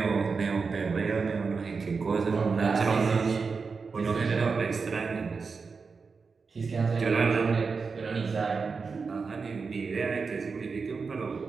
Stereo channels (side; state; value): left; quieter; 4.9 dB